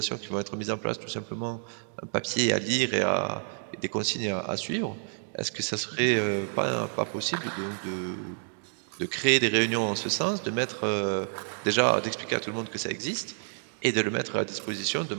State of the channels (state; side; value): silent; left; digital silence